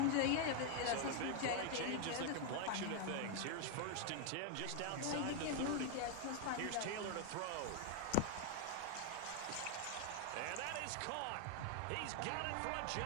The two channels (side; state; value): both; different; correlation 0.01